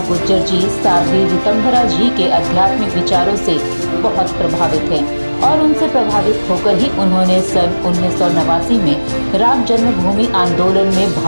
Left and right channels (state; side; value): inverted; both; correlation -1.00